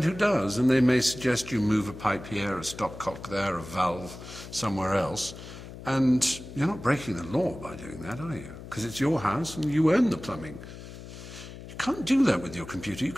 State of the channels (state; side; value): noise; left; hum, 13 dB below the sound